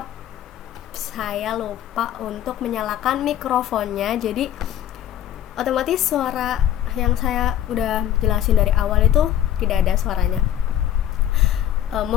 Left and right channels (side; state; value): right; quieter; 11.4 dB